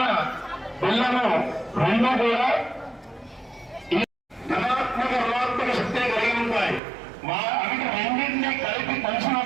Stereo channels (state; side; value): drops out; left; at 6.8 s